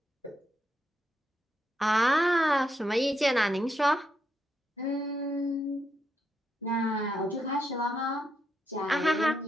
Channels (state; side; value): normal; both; correlation 0.81